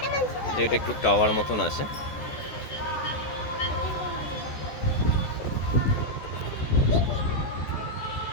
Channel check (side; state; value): right; late; 14 ms